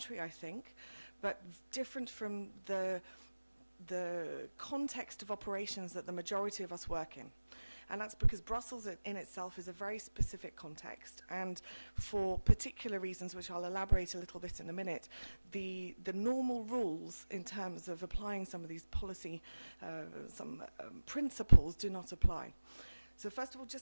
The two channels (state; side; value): inverted; both; correlation -1.00